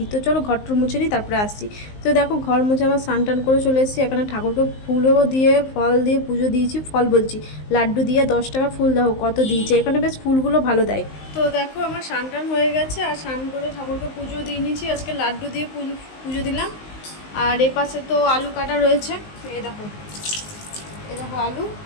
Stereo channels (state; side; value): late; right; 19 ms